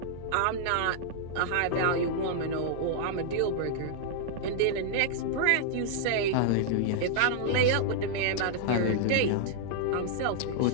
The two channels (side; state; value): both; different; correlation -0.01